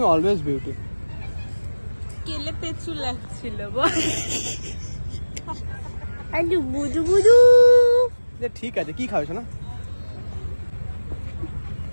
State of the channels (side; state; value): both; inverted; correlation -1.00